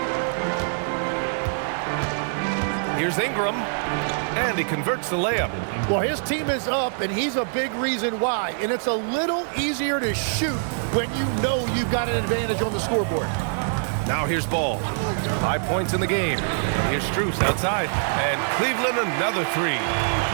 Here's Ingram. And he converts the layup. Well, his team is up, and he's a big reason why. And it's a little easier to shoot when you know you've got an advantage on the scoreboard. Now here's Ball. 5 points in the game. Here's Strus outside. And Cleveland another 3.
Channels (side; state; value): left; silent; digital silence